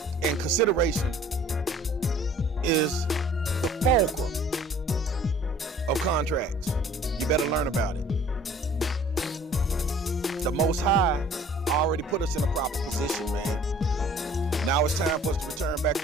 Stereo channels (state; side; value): normal; both; correlation 0.52